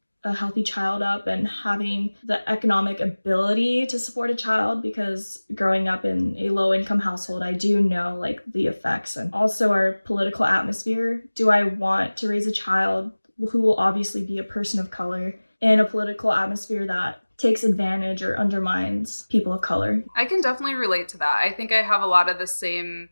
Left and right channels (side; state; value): both; inverted; correlation -1.00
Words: a healthy child up and having the economic ability to support a child, because growing up in a low income household, I do know the effects and also our political atmosphere. Do I want to raise a child who will obviously be a person of color in a political atmosphere that takes advantage or undermines people of color? I can definitely relate to that. I think I have a lot of the same